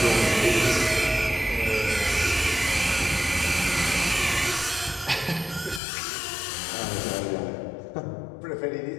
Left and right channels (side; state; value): right; drops out; at 5.8 s